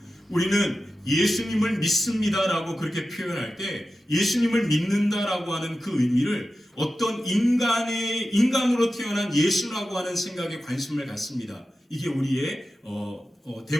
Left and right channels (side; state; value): both; normal; correlation 0.93